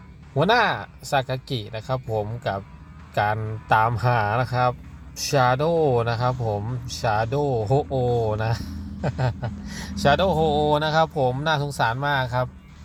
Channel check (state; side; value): identical; both; correlation 1.00